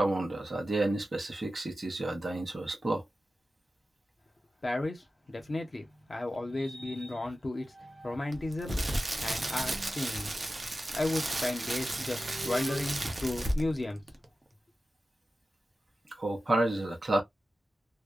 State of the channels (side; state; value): both; normal; correlation 0.94